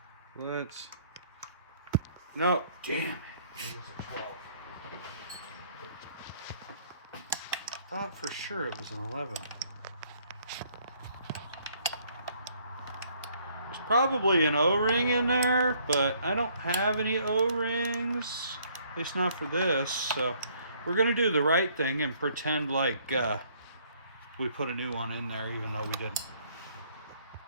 Let's. No, damn it. It was a 12. Thought for sure it was an 11. There's probably an O-ring in there, but I don't have any O-rings. At least not for this. So we're going to do the right thing and pretend like we put a new one in there, even though we didn't.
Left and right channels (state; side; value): inverted; both; correlation -0.64